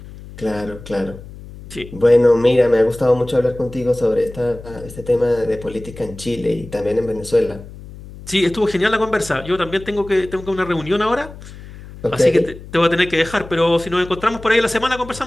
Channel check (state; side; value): noise; left; hum, 16 dB below the sound